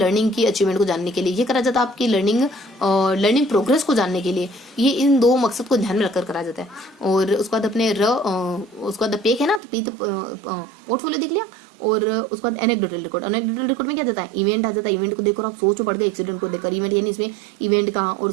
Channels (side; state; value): left; drops out; at 9.6 s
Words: की अचीवमेंट को जानने के लिए, ये करा जाता है आपकी लर्निंग प्रोग्रेस को जानने के लिए। ये इन दो मकसद को ध्यान में रखकर करा जाता है। और उसके बाद अपने उसके बाद पेक है ना, तो पी तो पोर्टफोलियो देख लिया। और उसके बाद एनेक्डोटल रिकॉर्ड में क्या जाता है, इवेंट आ जाता है। इवेंट को देखकर आप सोच पड़ गए, एक्सीडेंट को देखकर। इवेंट यानी इसमें इवेंट का और